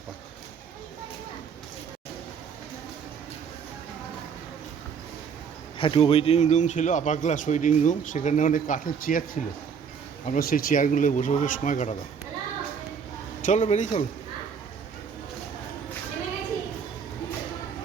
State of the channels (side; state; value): left; quieter; 6.6 dB